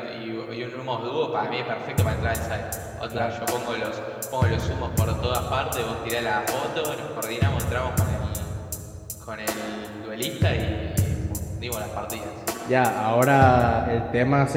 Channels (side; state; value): both; identical; correlation 1.00